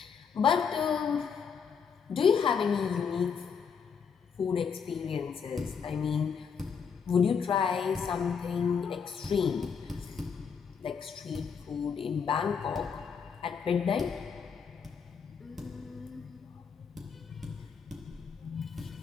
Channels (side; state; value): right; quieter; 6.4 dB